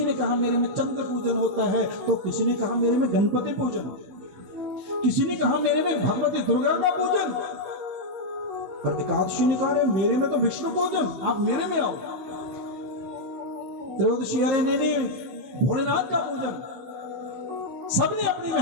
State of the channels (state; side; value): late; left; 16 ms